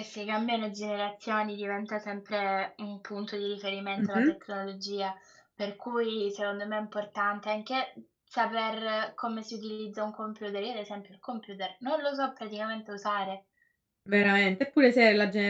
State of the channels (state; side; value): identical; both; correlation 1.00